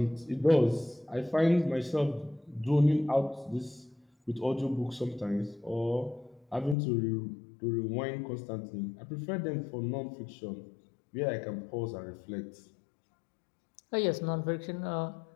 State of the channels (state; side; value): drops out; right; at 6.8 s